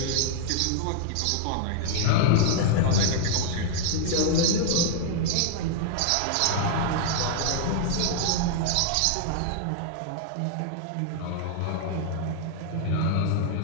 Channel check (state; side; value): different; both; correlation 0.00